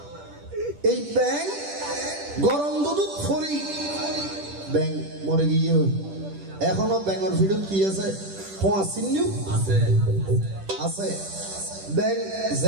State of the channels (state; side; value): late; left; 10 ms